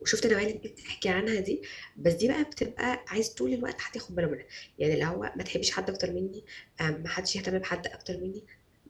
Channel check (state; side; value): identical; both; correlation 1.00